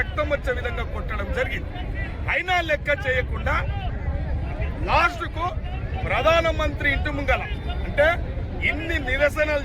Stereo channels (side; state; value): both; identical; correlation 1.00